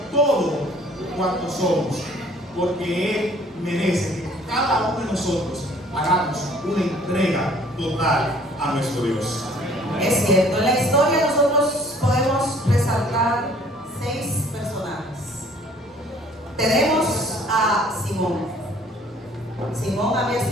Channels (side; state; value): both; normal; correlation 0.56